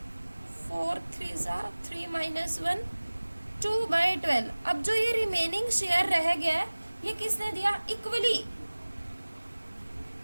4 3 ज़ा 3 - 1 2/12। अब जो ये रिमेनिंग शेयर रह गया ये किसने दिया, इक्वली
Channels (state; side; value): inverted; both; correlation -1.00